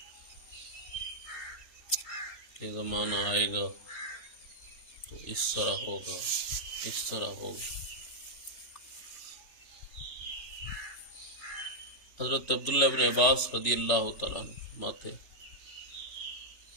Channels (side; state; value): right; late; 3.4 ms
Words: کہ زمانہ آئے گا تو اس طرح ہوگا، اس طرح ہوگا۔ حضرت عبداللہ بن عباس رضی اللہ تعالیٰ عنہ فرماتے